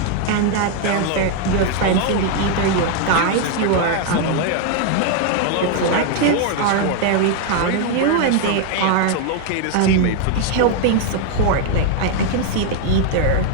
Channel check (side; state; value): both; different; correlation 0.00